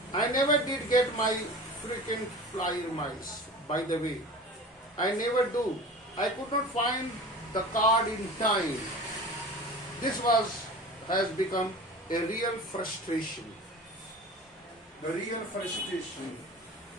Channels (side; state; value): both; normal; correlation 0.37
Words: I never did get my frequent flyer miles, by the way. I never do. I could not find the card in time. This has become a real frustration. The real frustration.